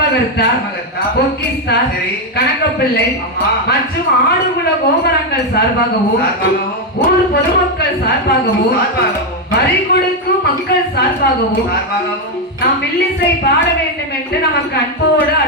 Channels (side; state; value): both; normal; correlation 0.04